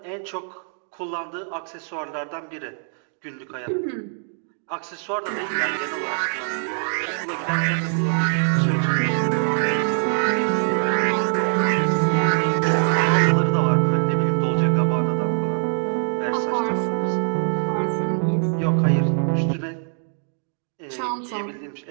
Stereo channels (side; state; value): left; silent; digital silence